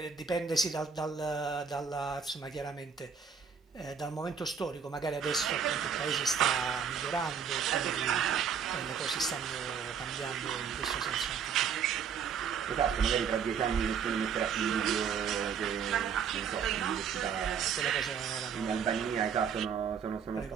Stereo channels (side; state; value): left; quieter; 6.9 dB